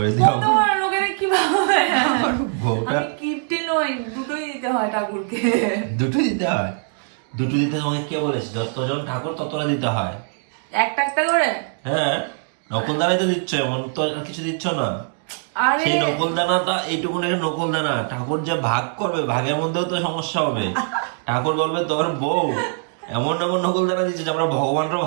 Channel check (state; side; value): silent; left; 57 dB below the other